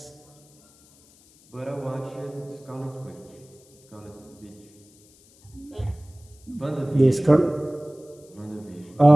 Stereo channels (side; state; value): left; noise; hiss, 28 dB below the sound